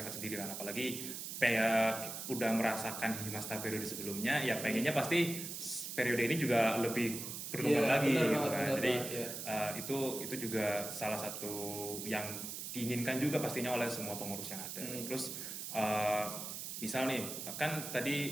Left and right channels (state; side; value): noise; right; hiss, 6 dB below the sound